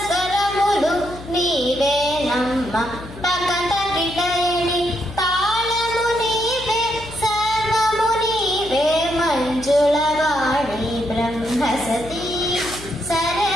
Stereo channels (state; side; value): noise; left; hum, 15 dB below the sound